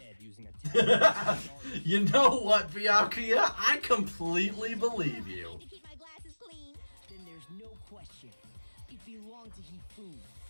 using a You know what, Byakuya? I completely believe you. To keep my glasses clean. Then there's no question. It belonged to Hifumi.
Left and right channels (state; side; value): inverted; both; correlation -1.00